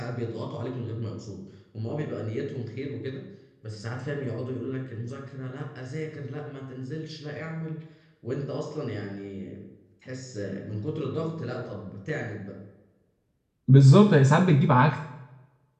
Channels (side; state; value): both; identical; correlation 1.00